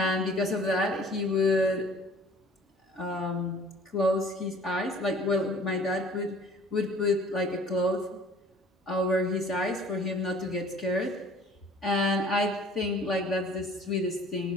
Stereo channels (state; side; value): normal; both; correlation 0.50